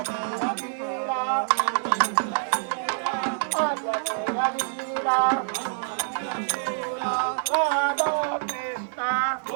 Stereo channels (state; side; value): silent; left; 61 dB below the other